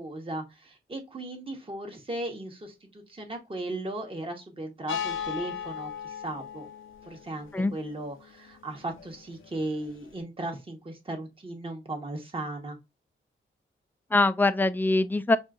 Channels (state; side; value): normal; both; correlation 0.69